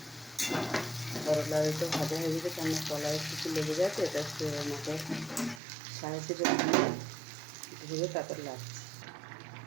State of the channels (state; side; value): drops out; left; at 5.6 s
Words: করলা একটু ভাজা হয়ে গেছে, কেন কলায় কিছু লেগে যাচ্ছে, এটা আমাকে সাহায্য করে ধরে তারপর লাগছে।